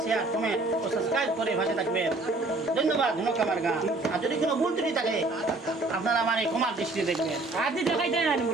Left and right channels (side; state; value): left; quieter; 3.1 dB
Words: শেয়ার, কমেন্ট ও সাবস্ক্রাইব করে ভাষে থাকবেন। ধন্যবাদ। ধন্যবাদ আমার গান। আর যদি কোনো ভুল ত্রুটি থাকে আপনারা আমার এই ক্ষমার দৃষ্টি দেখবেন। আদি দেখাই দেয় না